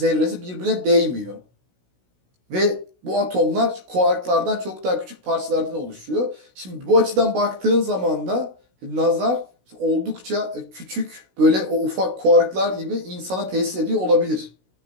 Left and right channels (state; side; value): late; left; 16 ms